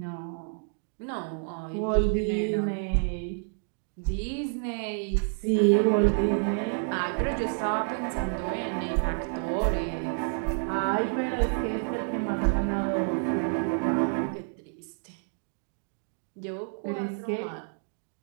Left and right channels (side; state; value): left; silent; 57 dB below the other